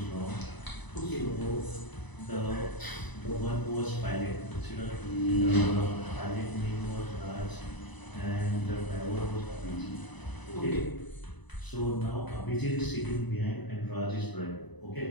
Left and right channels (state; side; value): late; right; 1.0 ms